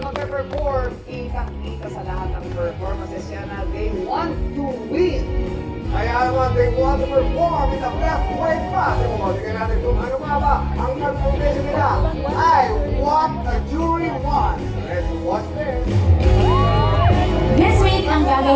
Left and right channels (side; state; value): both; identical; correlation 1.00